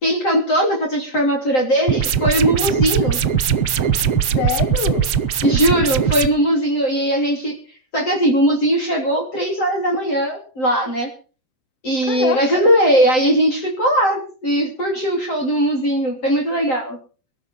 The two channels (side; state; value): right; late; 7.8 ms